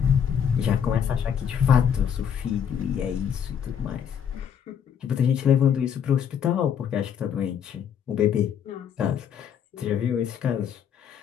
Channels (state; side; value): quieter; right; 8.2 dB